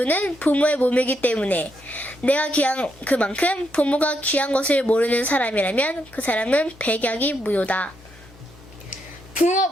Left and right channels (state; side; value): normal; both; correlation 0.79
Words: 부모의 몸이기 때문에 내가 귀한 그만큼 부모가 귀한 것을 모르는 사람이라면 그 사람은 백약이 무효다.